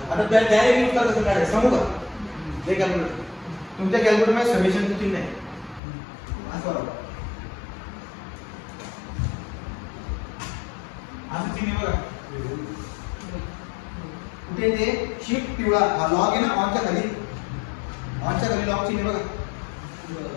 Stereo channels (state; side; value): drops out; right; at 5.8 s